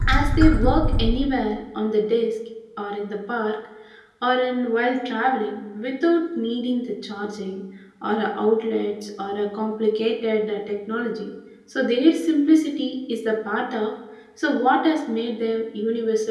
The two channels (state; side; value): identical; both; correlation 1.00